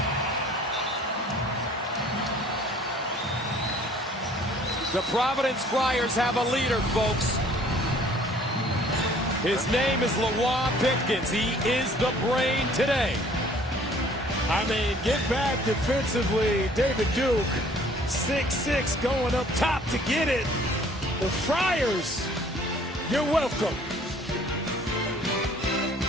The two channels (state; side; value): normal; both; correlation 0.55